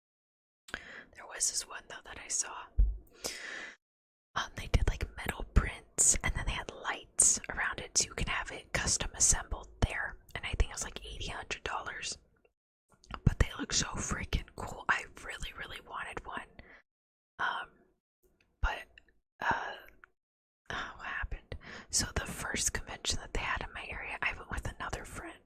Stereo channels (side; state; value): both; identical; correlation 1.00